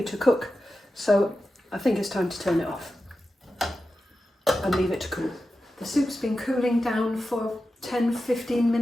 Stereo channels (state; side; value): normal; both; correlation 0.92